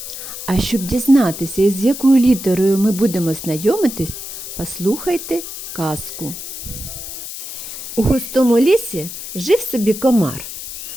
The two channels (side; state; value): left; noise; hiss, 9 dB below the sound